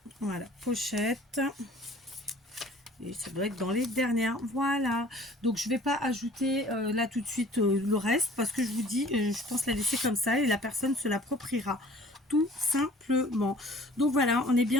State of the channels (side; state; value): both; normal; correlation 0.50